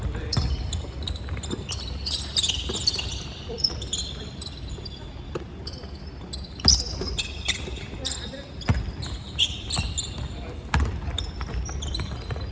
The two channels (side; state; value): both; identical; correlation 1.00